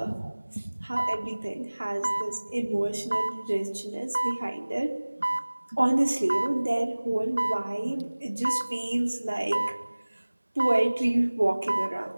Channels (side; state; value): both; inverted; correlation -1.00